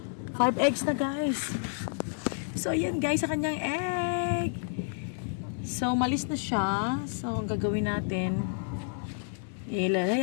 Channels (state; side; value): silent; right; digital silence